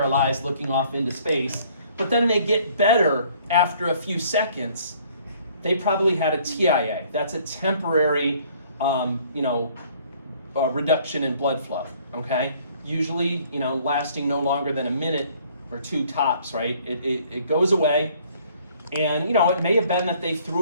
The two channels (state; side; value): inverted; both; correlation -0.59